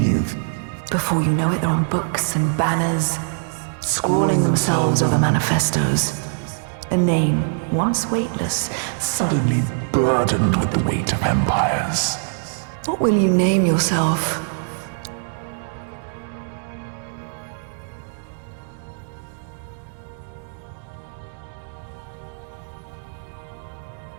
Before you know it, they're on books and banners, scrawling themselves over manifestos. A name, once weightless, suddenly burdened with the weight of empires. What will you name yourself?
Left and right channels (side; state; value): left; silent; 62 dB below the other